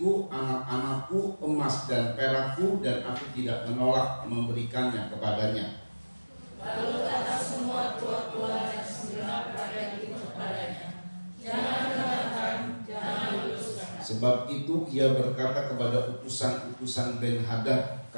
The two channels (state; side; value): inverted; both; correlation -1.00